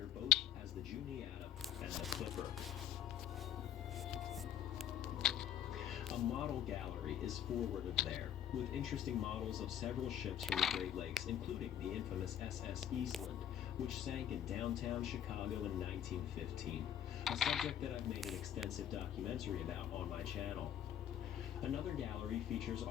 both as the Juniata and the Clipper. A model gallery is forward of there, with interesting models of several ships from the Great Lakes, including the infamous SS Eastland, which sank in downtown Chicago in 1915, a subject that I've made an extensive documentary about on my channel. Another gallery features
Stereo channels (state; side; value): quieter; right; 10.3 dB